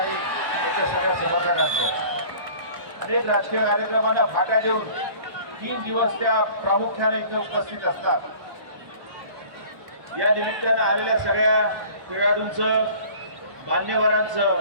त्याच्या सगळ्या समर्थकांचं. अनेक राजकीय कार्यक्रमांना फाटा देऊन 3 दिवस त्या प्रामुख्याने इथे उपस्थित असतात. या निमित्तानं आलेल्या सगळ्या खेळाडूंचं,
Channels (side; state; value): left; late; 1.2 ms